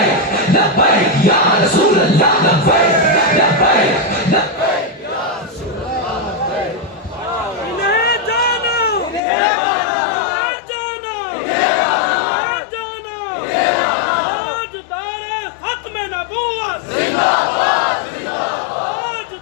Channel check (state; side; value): drops out; right; at 9.2 s